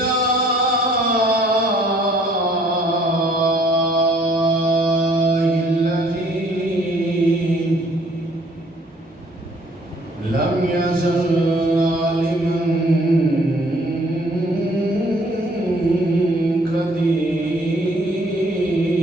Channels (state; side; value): normal; both; correlation 0.60